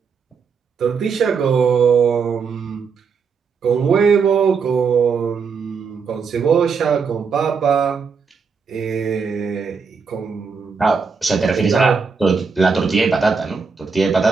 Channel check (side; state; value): left; quieter; 5.5 dB